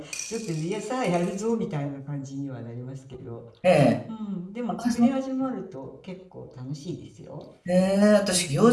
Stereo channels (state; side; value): identical; both; correlation 1.00